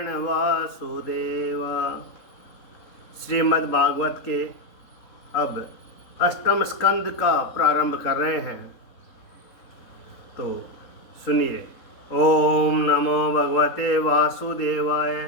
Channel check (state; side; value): late; right; 3.9 ms